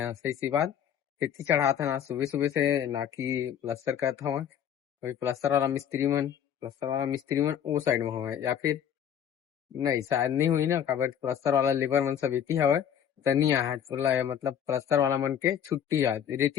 सही सी बात। रेती चढ़ा था ना सुबह सुबह से, ना कि प्लास्टर कर था वहाँ। वही प्लास्टर वाला मिस्त्री मन वो साइड में हुआ है, या फिर नहीं शायद नहीं हुई ना, काबर प्लस्तर वाला लेबर मन सब इति हवे तनी आहत बोला है, मतलब प्लस्तर वाला मन के छुट्टी आज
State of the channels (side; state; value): right; quieter; 9.1 dB